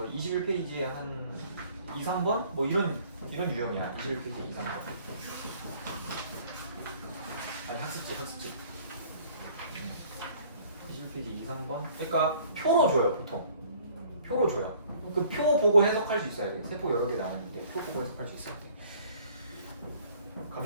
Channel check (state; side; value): inverted; both; correlation -0.55